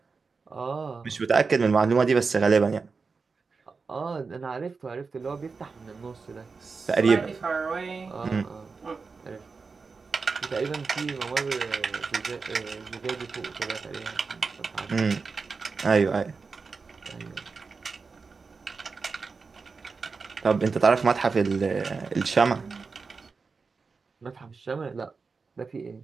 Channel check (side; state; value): left; quieter; 4.7 dB